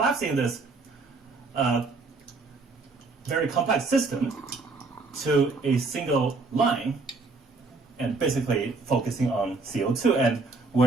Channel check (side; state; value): left; quieter; 3.9 dB